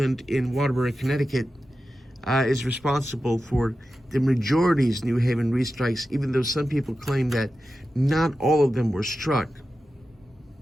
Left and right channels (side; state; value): both; normal; correlation 0.92